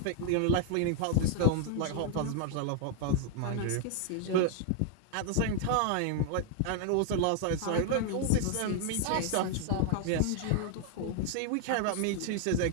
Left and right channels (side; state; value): both; different; correlation 0.00